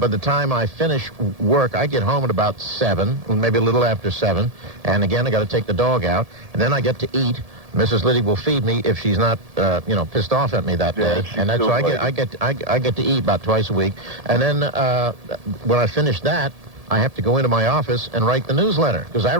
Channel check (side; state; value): left; late; 1.7 ms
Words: the time I finish work, I get home at about 7, maybe a little after 7. And again, I got to take the dog out. And then I get to eat. Mrs. Liddy will feed me if she's not, pissed off at me that day, and that's so I get to eat about twice a week. And then when I finish that, I have to go into my office and write the newsletter because I